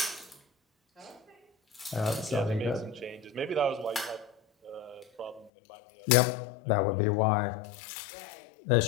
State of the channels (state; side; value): drops out; right; at 5.5 s